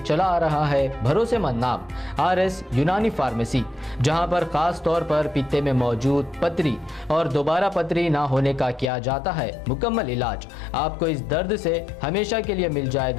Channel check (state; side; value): drops out; right; at 8.9 s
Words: आ रहा है भरोसेमंद नाम RS यूनानी फार्मेसी, जहां पर खास तौर पर पित्ते में मौजूद पथरी और दोबारा पथरी ना होने का किया जाता है मुकम्मल इलाज। आपको इस दर्द से हमेशा के लिए मिल